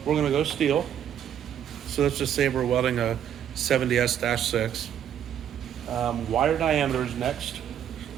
we're going to go steel. So let's just say we're welding a 70S-6. Wire diameters next.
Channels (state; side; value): quieter; left; 9.6 dB